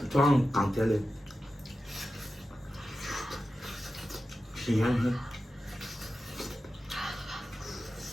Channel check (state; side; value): normal; both; correlation 0.92